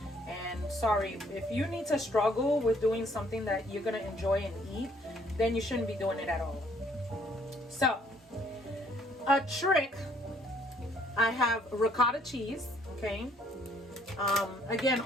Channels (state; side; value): normal; both; correlation 0.64